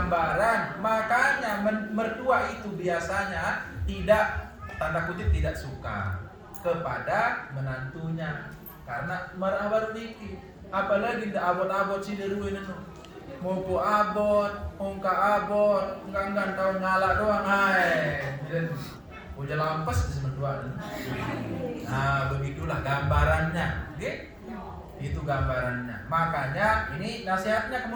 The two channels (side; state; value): both; identical; correlation 1.00